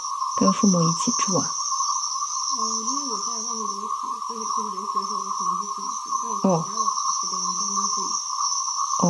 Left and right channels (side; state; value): both; identical; correlation 1.00